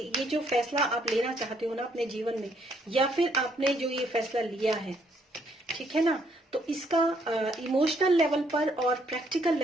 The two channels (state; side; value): normal; both; correlation 0.70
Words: जो फैसला आप लेना चाहते हो ना अपने जीवन में, या फिर आपने जो ये फैसला लिया है, ठीक है ना, तो इसका इमोशनल लेवल पर और प्रैक्टिकल